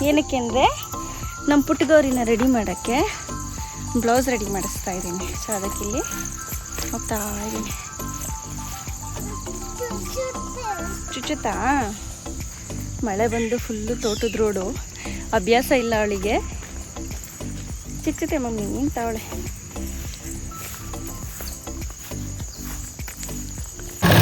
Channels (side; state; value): both; identical; correlation 1.00